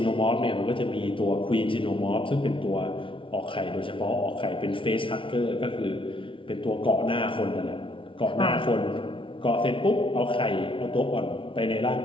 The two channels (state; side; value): late; right; 0.25 ms